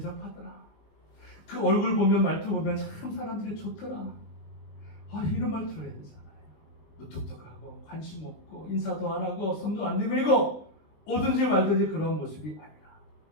그 얼굴 보면 말투 보면 참 사람들이 좋더라. 이런 말 들어야 되잖아요. 무뚝뚝하고 관심 없고 인사도 안 하고 손도 안 내밀고 오든지 말든지 그런 모습이 아니라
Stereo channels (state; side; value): late; right; 20 ms